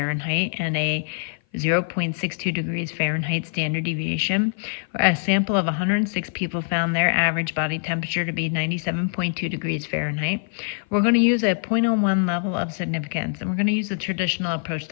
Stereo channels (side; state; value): right; silent; 56 dB below the other